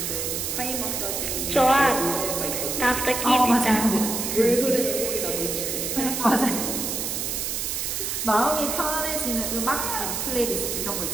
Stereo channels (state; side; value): noise; right; hiss, 2 dB below the sound